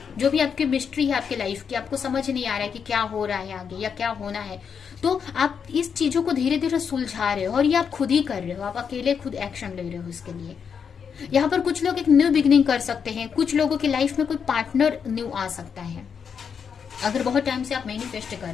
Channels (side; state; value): right; quieter; 6.8 dB